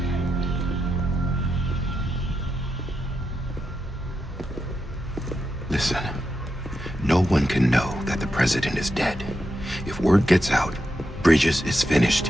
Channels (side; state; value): both; normal; correlation 0.86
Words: Listen, no one can know that the president is dead. If word gets out, Bridges is